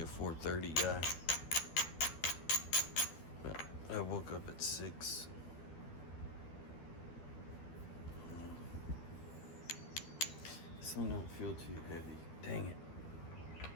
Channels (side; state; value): right; late; 12 ms